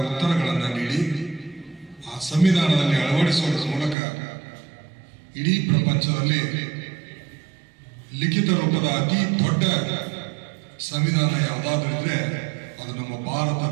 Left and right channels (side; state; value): left; drops out; at 4.0 s